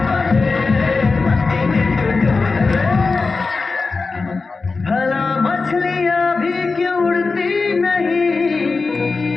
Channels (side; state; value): right; quieter; 4.1 dB